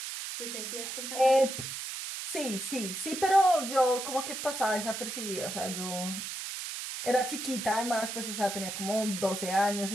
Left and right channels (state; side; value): noise; right; hiss, 6 dB below the sound